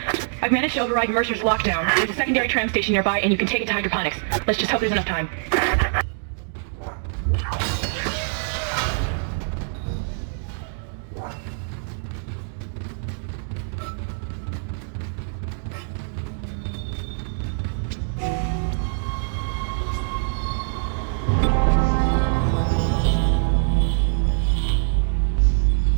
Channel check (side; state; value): left; silent; digital silence